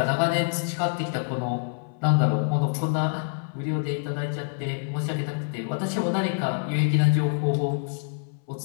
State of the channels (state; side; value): silent; right; 61 dB below the other